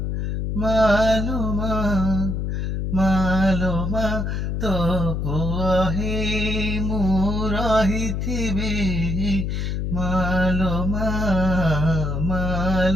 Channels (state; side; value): noise; left; hum, 1 dB below the sound